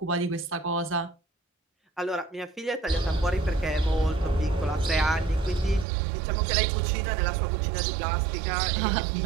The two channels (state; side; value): drops out; left; at 5.9 s